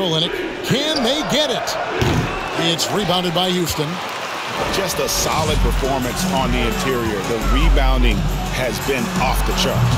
Can they get it? It's rebounded by Houston. Just a solid performance on the interior. The rebounding has been off the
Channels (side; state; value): both; identical; correlation 1.00